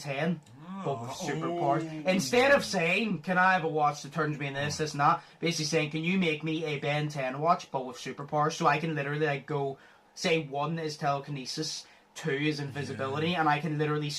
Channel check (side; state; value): both; identical; correlation 1.00